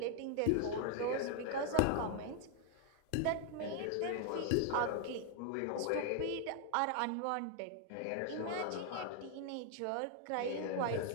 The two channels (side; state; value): both; different; correlation 0.00